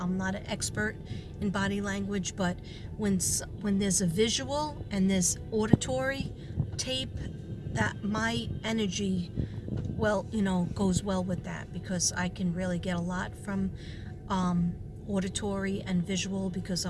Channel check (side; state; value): both; identical; correlation 1.00